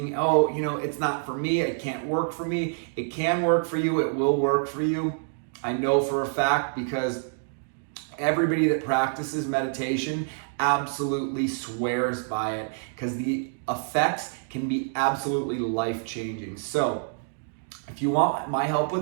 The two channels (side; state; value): left; silent; digital silence